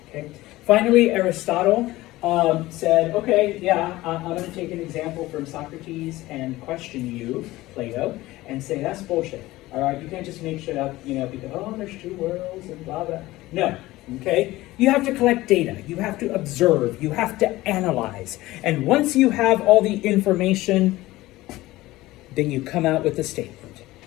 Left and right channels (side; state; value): right; quieter; 18.0 dB